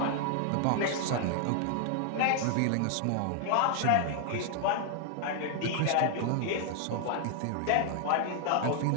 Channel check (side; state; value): both; different; correlation 0.00